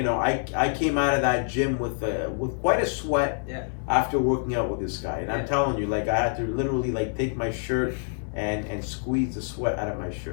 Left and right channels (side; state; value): right; silent; 61 dB below the other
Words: know, I came out of that gym with quite a sweat after working out with this guy. And I'm telling you, like, I had to literally, like, take my shirt and squeeze the sweat out of my